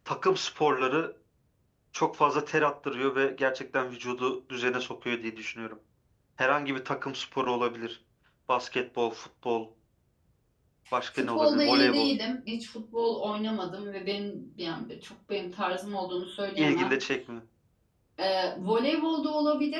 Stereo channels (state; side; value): identical; both; correlation 1.00